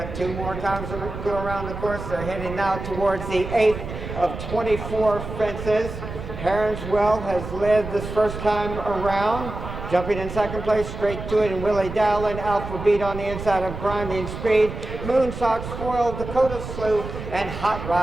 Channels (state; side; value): noise; right; rumble, 8 dB below the sound